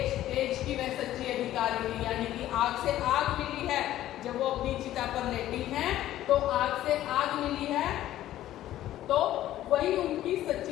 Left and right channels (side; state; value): right; quieter; 13.6 dB